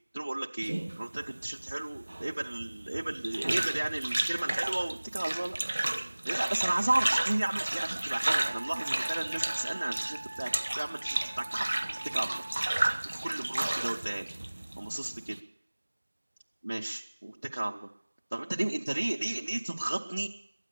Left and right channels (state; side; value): inverted; both; correlation -1.00